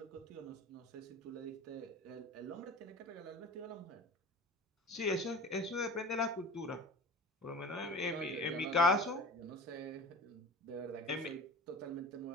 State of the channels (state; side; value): normal; both; correlation 0.38